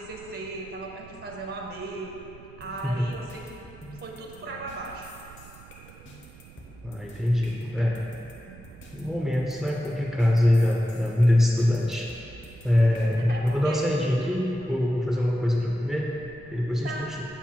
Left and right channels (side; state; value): right; noise; rumble, 20 dB below the sound